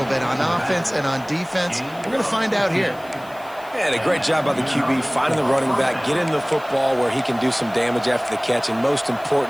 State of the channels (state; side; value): noise; left; hiss, 25 dB below the sound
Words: bit on offense and on defense. We're going to find out here. And a great job by the QB, finding the running back, getting the football where he can do some damage after the catch, and most